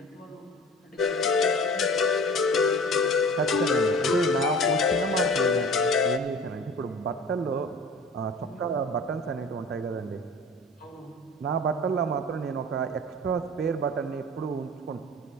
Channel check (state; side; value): normal; both; correlation 0.41